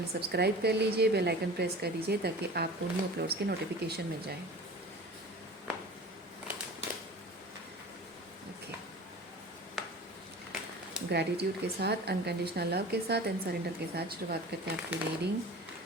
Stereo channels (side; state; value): both; normal; correlation 0.38